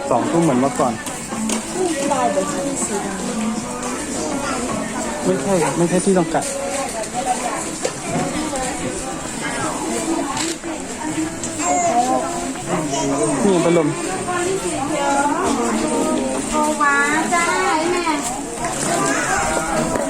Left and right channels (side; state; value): both; identical; correlation 1.00